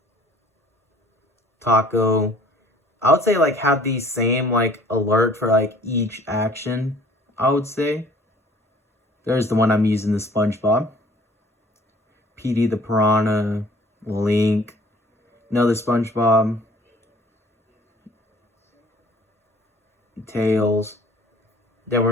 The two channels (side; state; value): both; normal; correlation 0.53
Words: Taco. I would say like have these same like alert for like each action. I would say. There's the one I'm using, the SpongeBob. PD the Piranha. Link. Another SpongeBob. Tails. Then